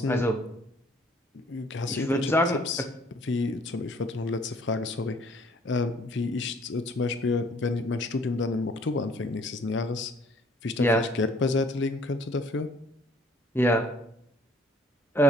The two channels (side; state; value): both; normal; correlation 0.58